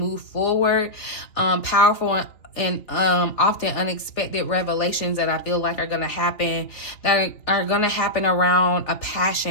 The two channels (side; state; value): right; late; 3.4 ms